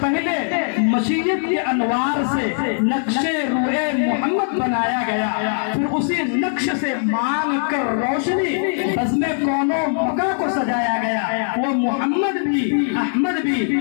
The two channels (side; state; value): right; silent; 64 dB below the other